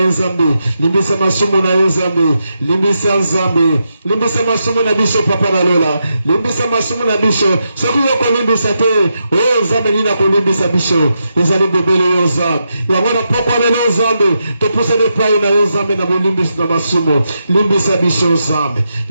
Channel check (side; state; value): both; inverted; correlation -0.85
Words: Zambe limbisa masumu na yo Zambe limbisa Zambe limbisa masumu na biso papa na lola limbisa masumu na biso soki yo kolimbisa te o Zambe nina kolimbisa biso ezali bebele yo Zambe yango na poko lelo Zambe topusa ne pai na yo Zambe na bolimbisa na masumu limbisa biso Zambe